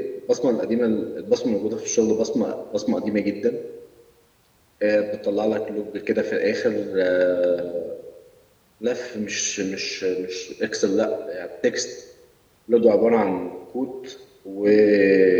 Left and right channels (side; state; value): both; identical; correlation 1.00